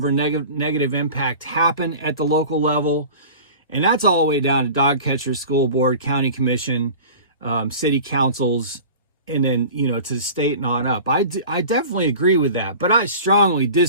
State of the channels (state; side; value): inverted; both; correlation -0.39